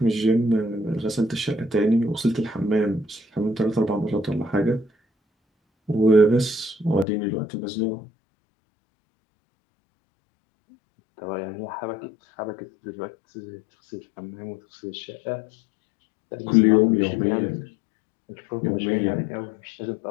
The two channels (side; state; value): right; drops out; at 7.1 s